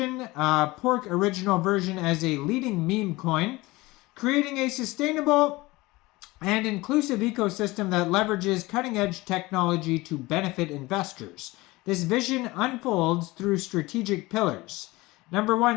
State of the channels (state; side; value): quieter; right; 21.0 dB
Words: Pork Original version as a leading meme coin, creating a sustainable and inclusive ecosystem that leverages cutting-edge technology to benefit investors. This vision unfolds through strategic pillars. Number